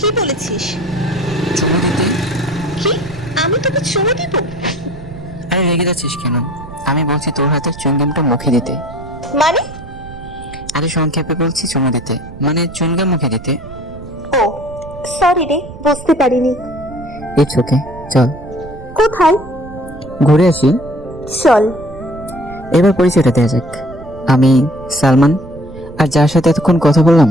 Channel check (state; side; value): noise; right; rumble, 15 dB below the sound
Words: বলেছিস? চুমু দিতে? কি? আমি তোকে চুমু দিব? আরে রেগে যাচ্ছিস কেন? আমি বলছি তোর হাতের চুইংগামটা মুখে দিতে। মানে? আরে সংক্ষেপে বলছি চুমু দিতে, মানে চুইংগাম মুখে দিতে। ও সরি রে, বুঝতে পারিনি। ইটস ওকে, চল কোথায়? ঘুরে আসি। চল। এবার পরিচয়টা দেওয়া যাক। আমি সালমান, আর যার সাথে এতক্ষণ কথা বললাম